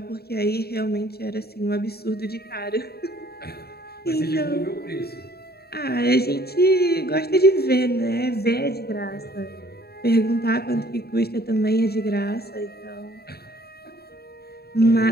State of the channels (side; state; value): right; late; 0.46 ms